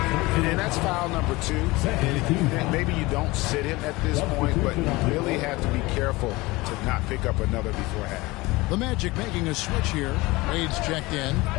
And that's foul number 2. And maybe you don't sit him at this point, but you really have to be careful to not pick up another before half. The Magic making a switch here. Wade's checked in.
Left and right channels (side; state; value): right; quieter; 21.7 dB